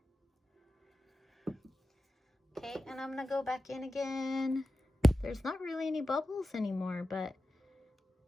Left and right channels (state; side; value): normal; both; correlation 0.93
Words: Okay, and I'm gonna go back in again. There's not really any bubbles anymore, but